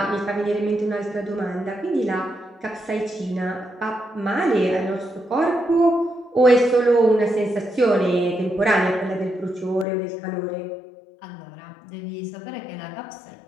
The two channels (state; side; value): drops out; right; at 9.9 s